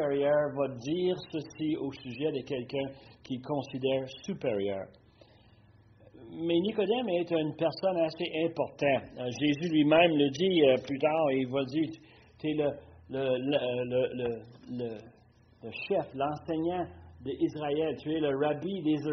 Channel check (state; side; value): identical; both; correlation 1.00